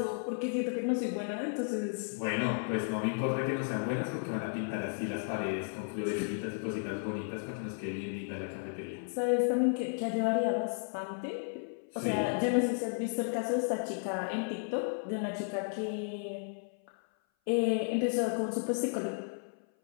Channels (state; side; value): silent; right; 55 dB below the other